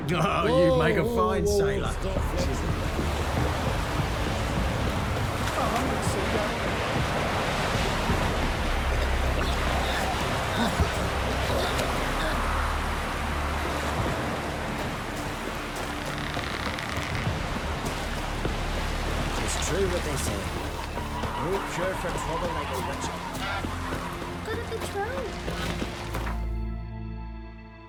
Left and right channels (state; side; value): identical; both; correlation 1.00